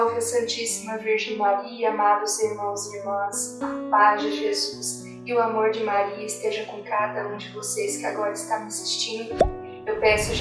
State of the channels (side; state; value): both; identical; correlation 1.00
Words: a Santíssima Virgem Maria, amados irmãos e irmãs, a paz de Jesus e o amor de Maria esteja com cada um de vocês que agora está me assistindo. Eu peço